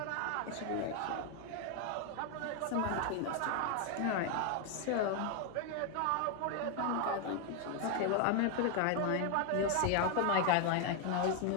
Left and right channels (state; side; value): different; both; correlation 0.00